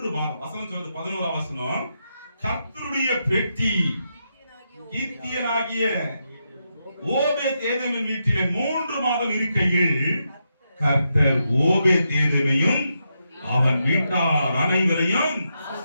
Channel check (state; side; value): inverted; both; correlation -0.84